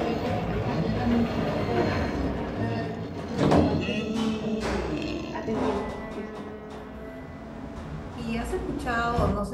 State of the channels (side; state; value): both; identical; correlation 1.00